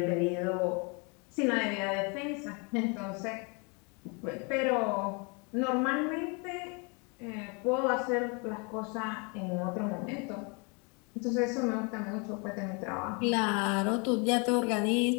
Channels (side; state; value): right; quieter; 32.6 dB